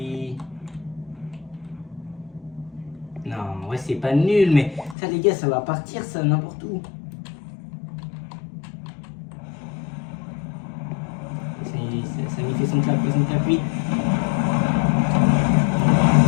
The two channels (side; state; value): right; drops out; at 5.0 s